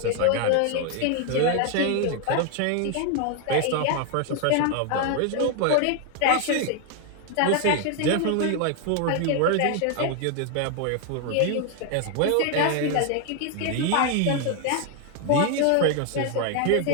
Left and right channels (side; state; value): both; different; correlation 0.01